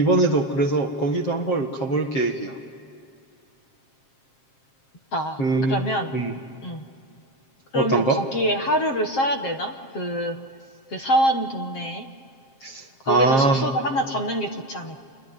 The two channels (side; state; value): right; late; 7.5 ms